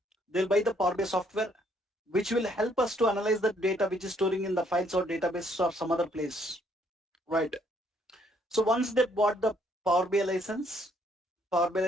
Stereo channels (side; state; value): both; normal; correlation 0.68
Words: They'll buy the Power BI software, which will help us to analyze the data which is storing in the files or databases or some other place, right? So once they bought the Power BI license,